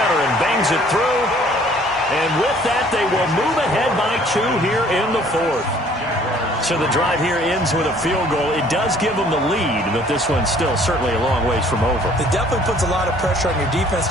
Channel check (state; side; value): normal; both; correlation 0.57